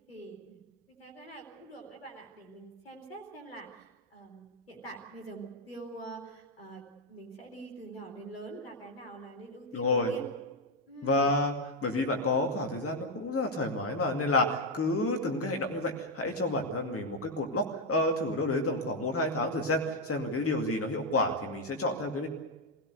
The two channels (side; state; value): both; normal; correlation 0.04